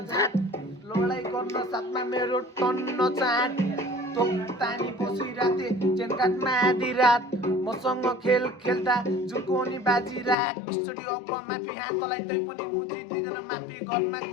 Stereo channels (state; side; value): drops out; right; at 10.4 s